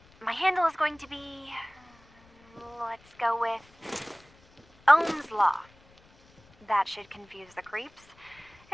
My handle is going to be... let's go with... Ohm's Law. That should confuse the creeps.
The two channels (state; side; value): noise; left; rumble, 29 dB below the sound